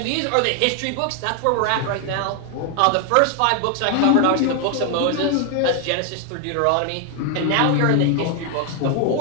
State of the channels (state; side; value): different; both; correlation 0.01